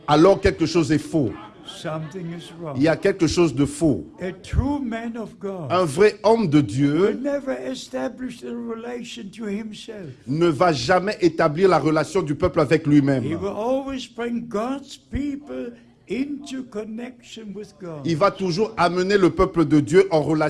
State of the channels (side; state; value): both; identical; correlation 1.00